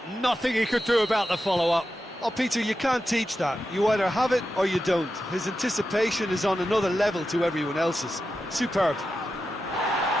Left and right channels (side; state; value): both; normal; correlation 0.90